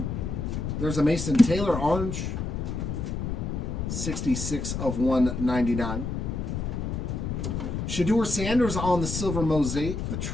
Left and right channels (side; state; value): left; noise; rumble, 3 dB below the sound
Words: There's a Mason Taylor orange. 66 of 199. Shedeur Sanders on the silver Mosaic, the